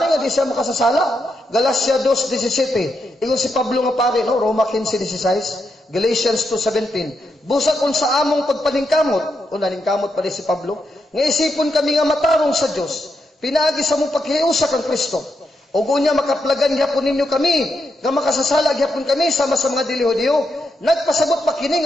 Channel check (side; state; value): both; normal; correlation 0.83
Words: nga di siya makasasala. Galatia 2:17. Ingon si Pablo nga pare, no? Roma 15:16. Galatians 2:17. Busa kung sa among pagpaningkamot, o naningkamot pa rin si Pablo, nga isipon kami nga matarong sa Diyos, pinaagi sa mong paghiusa kang Kristo. O gunya makaplagan gyapon ninyo kami, nga makasasala gyapon kami sama sa mga dili-Hudiyo. Nagpasabot pa kini